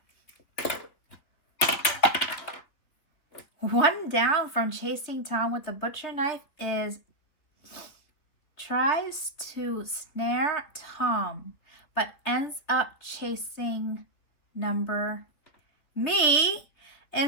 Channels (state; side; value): late; right; 3.7 ms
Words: 1 down from chasing Tom with the butcher knife is tries to snare Tom but ends up chasing me